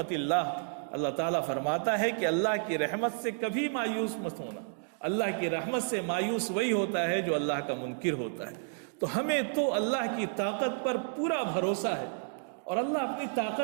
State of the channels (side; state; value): left; silent; digital silence